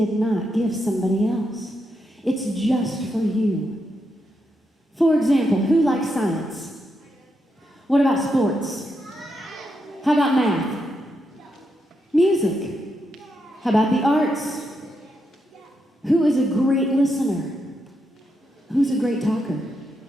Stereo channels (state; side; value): normal; both; correlation 0.83